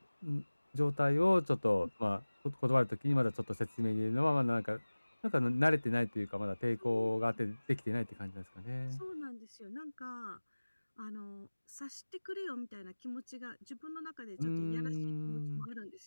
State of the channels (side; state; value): both; inverted; correlation -1.00